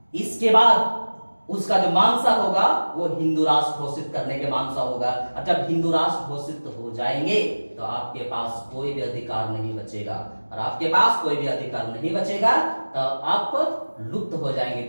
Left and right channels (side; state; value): both; inverted; correlation -1.00